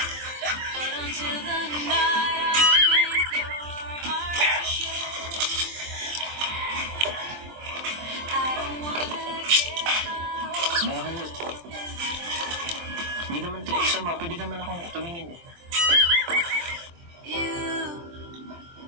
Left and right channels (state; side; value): late; left; 23 ms